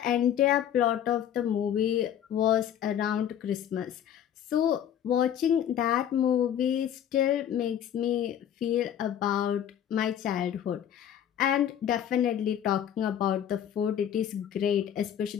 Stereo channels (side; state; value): right; quieter; 9.9 dB